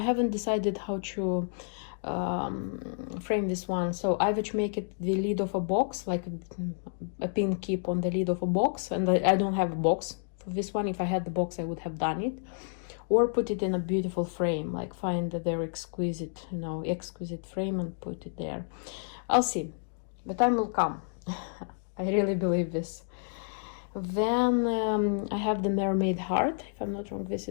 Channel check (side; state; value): right; silent; digital silence